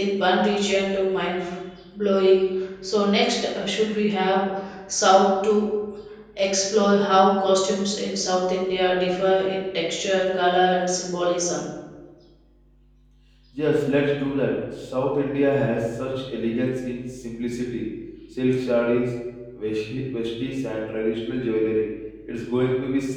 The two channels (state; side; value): identical; both; correlation 1.00